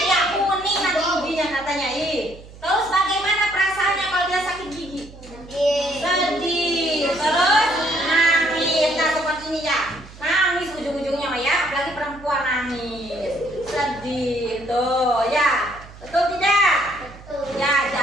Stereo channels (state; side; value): noise; right; hum, 19 dB below the sound